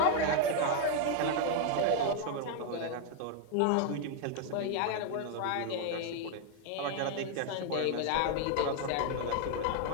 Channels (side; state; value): both; different; correlation 0.00